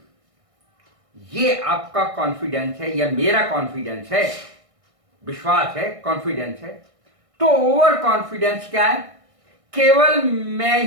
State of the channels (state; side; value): late; left; 1.6 ms